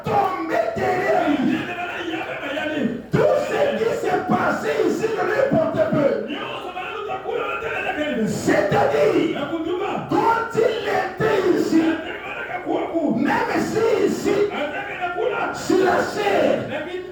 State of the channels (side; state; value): both; identical; correlation 1.00